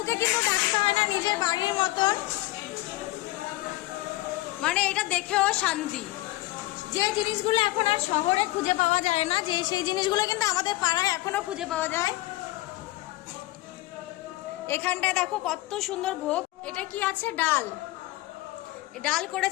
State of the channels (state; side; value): quieter; right; 18.6 dB